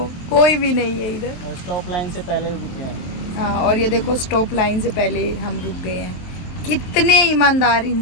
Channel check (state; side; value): late; right; 23 ms